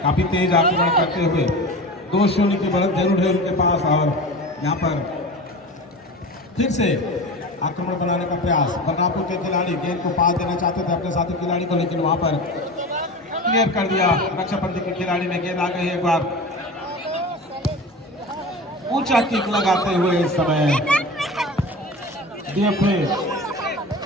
काफी तेज आक्रमण करते हुए 2-0 की बढ़त जरूर है उनके पास और यहाँ पर फिर से आक्रमण बनाने का प्रयास। बलरामपुर के खिलाड़ी गेंद को पास देना चाहते थे अपने साथी खिलाड़ी को, लेकिन वहां पर क्लियर कर दिया रक्षापंथी के खिलाड़ी ने। गेंद आ गई एक बार ऊंचा किक लगाते हुए इस समय डीएफए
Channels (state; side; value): normal; both; correlation 0.32